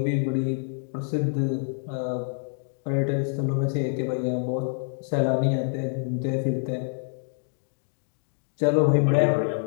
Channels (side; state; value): right; silent; digital silence